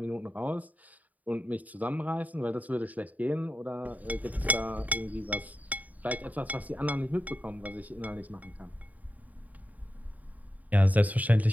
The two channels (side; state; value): left; late; 0.075 ms